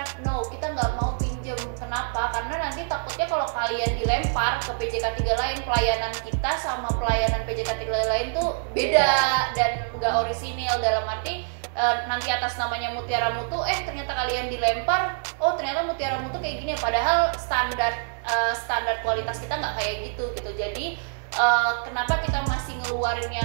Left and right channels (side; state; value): left; silent; digital silence